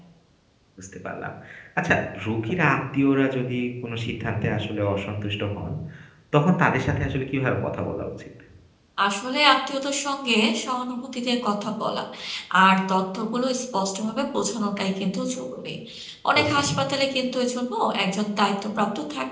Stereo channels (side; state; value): both; identical; correlation 1.00